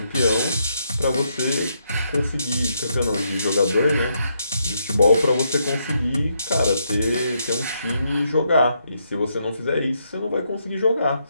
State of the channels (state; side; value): inverted; both; correlation -0.78